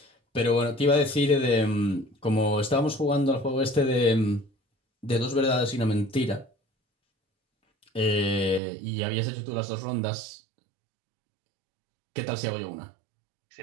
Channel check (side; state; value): left; drops out; at 8.6 s